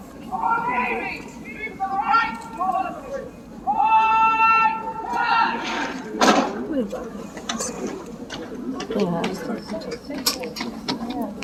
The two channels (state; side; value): identical; both; correlation 1.00